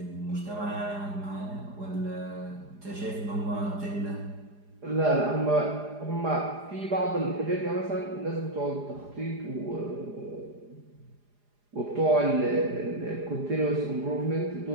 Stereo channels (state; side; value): late; left; 4.9 ms